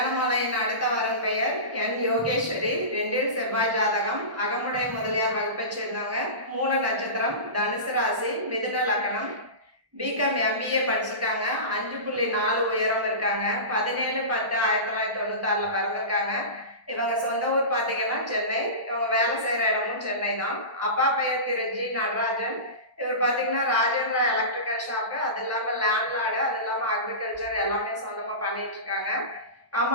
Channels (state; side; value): late; left; 1.1 ms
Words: அடுத்த வரன் பெயர் என் யோகேஸ்வரி. 2 செவ்வாய் ஜாதகம். அகமுடைய முதலியார் வகுப்பை சேர்ந்தவங்க. மூல நட்சத்திரம், தனுசு ராசி, மிதுன லக்னம். பிகாம் எம்பிஏ படிச்சிருக்காங்க. 5.4 உயரம் இருக்காங்க. 17/10/1996 பிறந்திருக்காங்க. இவங்க சொந்த ஊர் பார்த்தீங்கன்னா சென்னை. இவங்க வேலை செய்கிற இடமும் சென்னை தான். அப்பா பெயர் திரு ஜி நடராஜன். இவர் பார்த்தீங்கன்னா ராஜேந்திரா எலக்ட்ரிக்கல் ஷாப்பு, அது இல்லாமல் லேண்ட்லார்டு, அது இல்லாமல் அக்ரிகல்ச்சர் எல்லாமே சொந்தமாக பண்ணிட்டு இருக்காங்க.